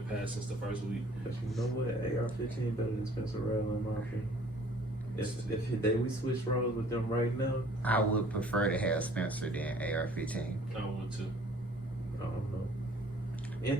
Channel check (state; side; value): normal; both; correlation 0.54